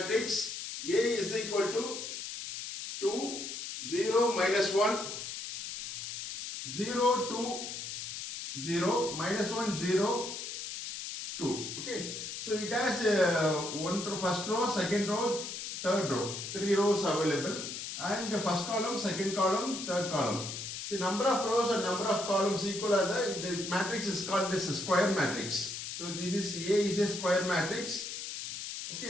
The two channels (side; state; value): left; noise; hiss, 7 dB below the sound